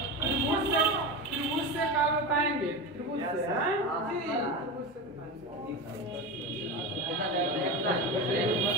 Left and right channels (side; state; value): both; normal; correlation 0.22